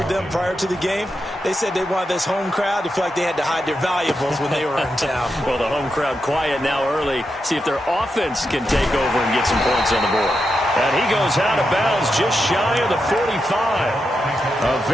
them prior to the game, they said they wanted this home crowd to feel like they had to hide their valuables when they were in town. Well, the home crowd quiet now early. See if their offense can take over and get some points on the board. And he goes out of bounds just shy of the 45. A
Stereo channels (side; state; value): both; normal; correlation 0.86